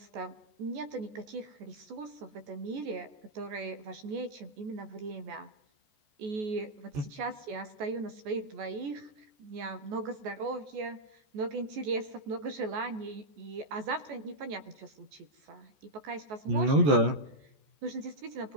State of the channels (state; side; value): late; left; 14 ms